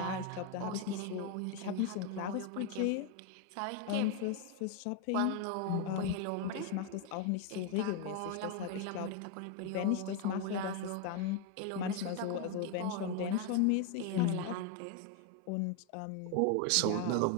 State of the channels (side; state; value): both; different; correlation 0.01